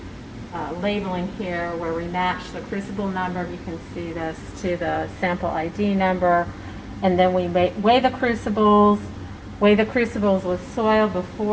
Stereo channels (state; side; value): identical; both; correlation 1.00